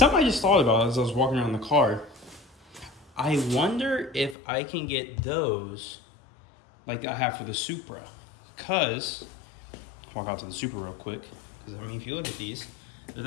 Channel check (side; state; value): right; drops out; at 4.4 s